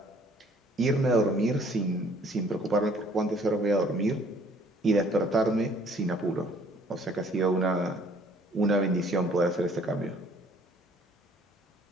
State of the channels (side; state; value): both; normal; correlation 0.58